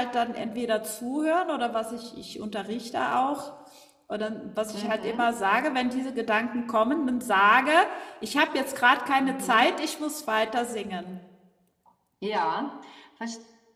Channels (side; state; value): both; identical; correlation 1.00